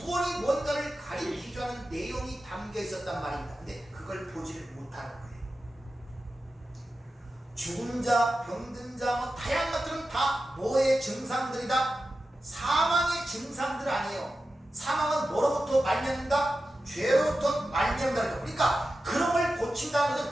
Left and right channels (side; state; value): both; normal; correlation 0.92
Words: 뭔가를 가리키자는 내용이 담겨 있었단 말입니다. 근데 그걸 보지를 못하는 거예요. 죽은 자, 병든 자, 뭐 다양한 것들은 다 뭐의 증상들이다? 사망의 증상들 아니에요. 사망은 뭐로부터 말미암는다? 죄로부터 말미암는다. 그러니까 그런 걸 고친다는